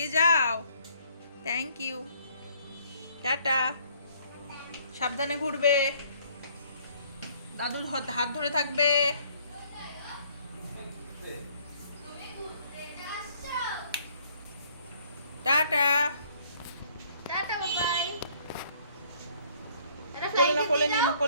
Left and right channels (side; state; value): both; inverted; correlation -0.61